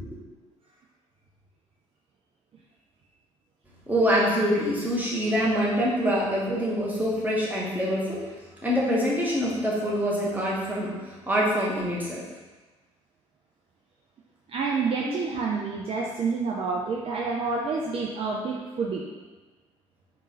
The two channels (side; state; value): both; normal; correlation 0.57